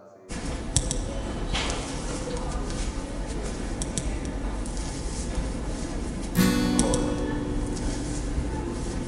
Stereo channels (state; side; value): identical; both; correlation 1.00